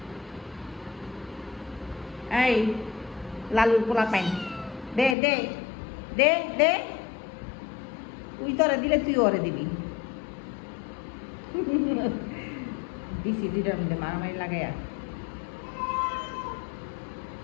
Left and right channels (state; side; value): drops out; right; at 5.2 s